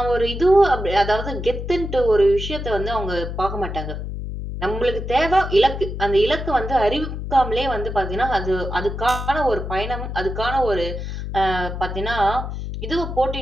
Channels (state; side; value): noise; left; hum, 6 dB below the sound